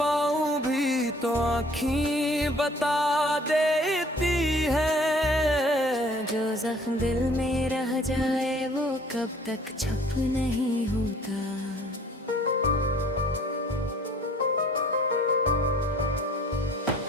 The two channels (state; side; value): normal; both; correlation 0.55